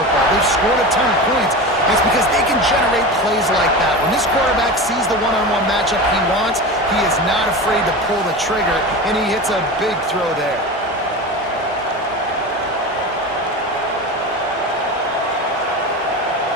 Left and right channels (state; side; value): normal; both; correlation 0.27